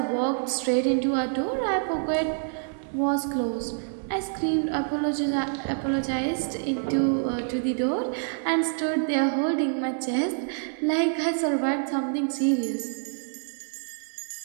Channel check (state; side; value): silent; left; digital silence